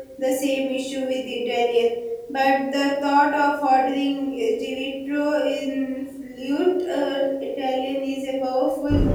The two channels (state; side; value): identical; both; correlation 1.00